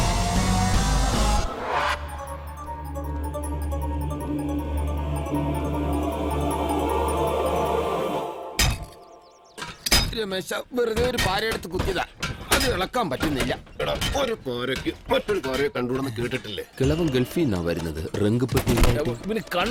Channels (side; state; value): both; identical; correlation 1.00